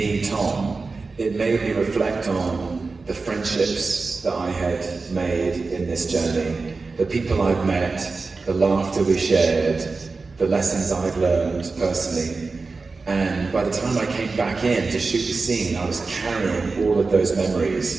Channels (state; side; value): quieter; left; 4.1 dB